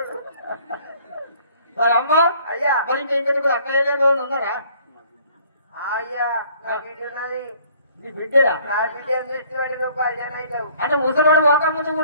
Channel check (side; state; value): both; inverted; correlation -0.58